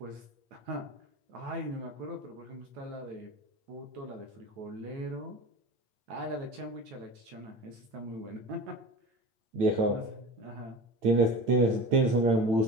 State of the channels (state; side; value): late; left; 9.0 ms